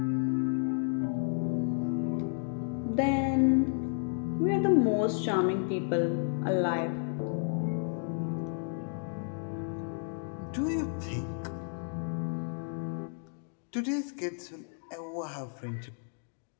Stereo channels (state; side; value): silent; right; 56 dB below the other